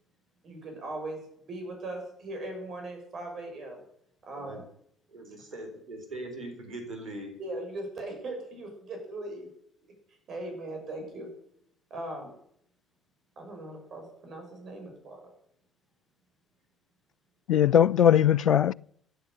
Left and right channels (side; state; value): right; quieter; 7.4 dB